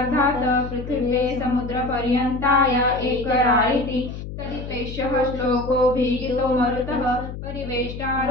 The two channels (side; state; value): left; noise; hum, 9 dB below the sound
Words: पृथिवे समुद्रपर्यन्ताय एकरायिति तदिपेशः श्लोकोऽभिहितो मरुतः